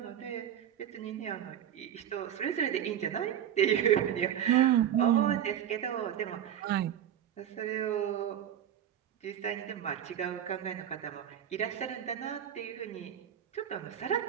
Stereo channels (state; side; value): quieter; left; 10.0 dB